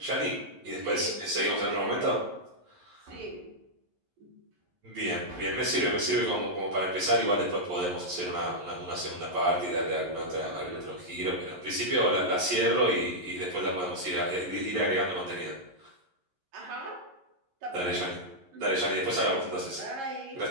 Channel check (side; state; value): left; late; 11 ms